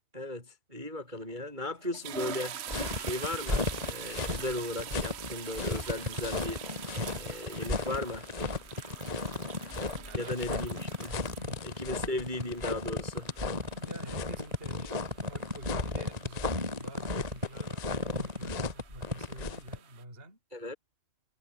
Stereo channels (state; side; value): late; left; 3.0 ms